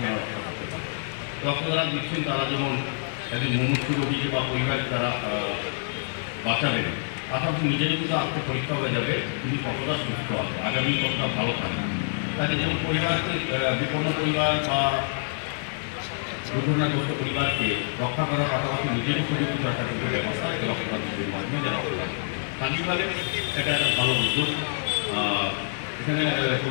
রক্ষা করতে পারে। রক্তদান দিচ্ছেন তারা যেমন একজন মুমূর্ষু রোগীকে বা পরিবার তারা বাঁচাবেন, পাশাপাশি নিজের কিন্তু আত্ম পরীক্ষা হয়ে যাবে তিনি কতটা সুস্থ হবে, আগামী কতটা ভালো থাকবে। তাকে যেমন পরিবারকে বিপন্ন পরিবার বা দুর্ঘটনাগ্রস্ত পরিবারকে রক্ষা করার পাশাপাশি নিজেরও সুরক্ষিত রাখার কিন্তু ব্যবস্থা রক্তদান শিবিরের মাধ্যমে যারা রক্তদান করে। স্থানীয়ভাবে এটা একটা ভালো উদ্যোগ। এখানে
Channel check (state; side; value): silent; right; digital silence